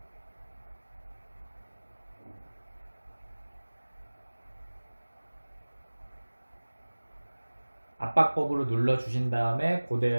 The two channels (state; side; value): inverted; both; correlation -1.00